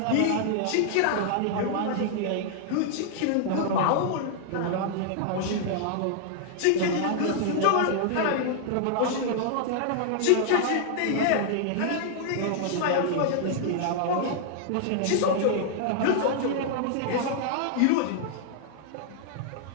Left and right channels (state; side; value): different; both; correlation -0.01